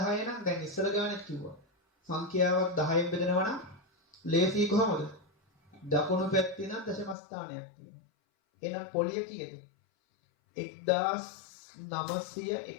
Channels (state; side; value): drops out; right; at 7.2 s